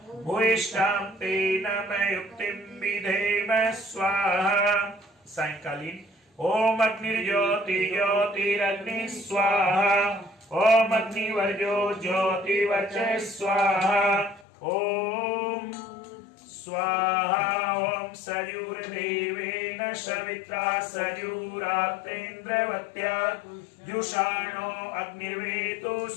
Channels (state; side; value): drops out; right; at 14.5 s